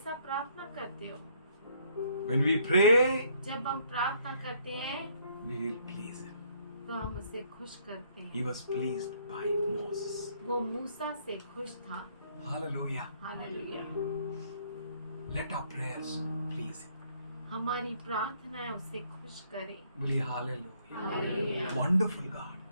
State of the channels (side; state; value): both; inverted; correlation -0.66